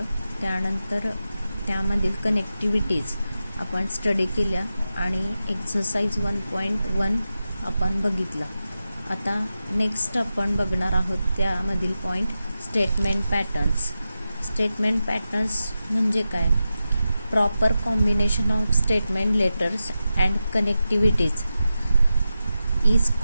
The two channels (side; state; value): both; inverted; correlation -0.92